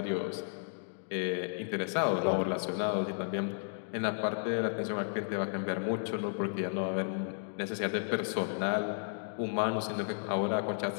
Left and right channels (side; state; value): right; silent; digital silence